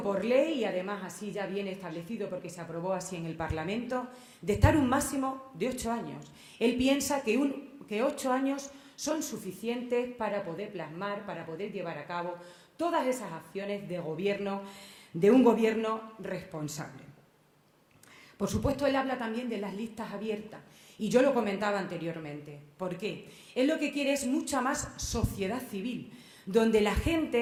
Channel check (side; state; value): both; identical; correlation 1.00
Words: por ley, y además así ya viene establecido porque se aprobó así en el Parlamento, de estar un máximo de 8 años. Él piensa que 8 años son suficientes para poder plasmar, para poder llevar a cabo todas esas acciones de gobierno, de un gobierno responsable. Por supuesto, él habla también de las listas abiertas. Y yo lo comentaba anteriormente. ¿Por qué? Él lo que quiere es mucha más sociedad civil, donde la